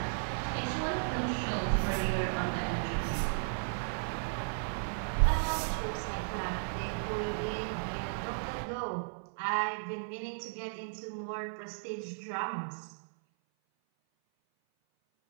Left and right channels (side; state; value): left; silent; 55 dB below the other